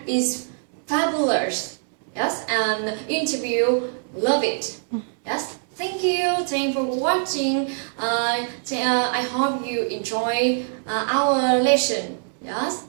is fabulous. Yes, and interview love it. Yes, thank you for watching. I hope you enjoy our lesson. Yes,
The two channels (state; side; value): silent; left; 61 dB below the other